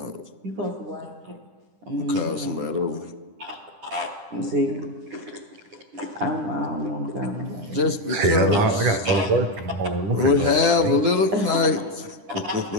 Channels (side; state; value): left; late; 10 ms